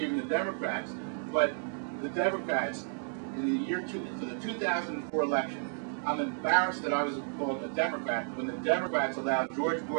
the Democrats. But the Democrats, in the for the 2004 election, I'm embarrassed that I was called a Democrat when the Democrats allowed George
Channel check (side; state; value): left; silent; digital silence